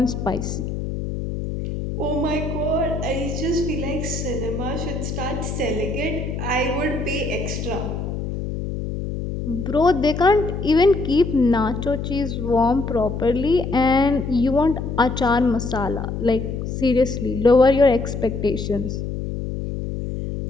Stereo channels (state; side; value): noise; left; hum, 4 dB below the sound